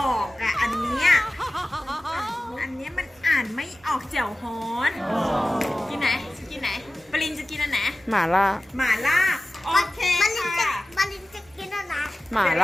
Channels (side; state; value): both; normal; correlation 0.96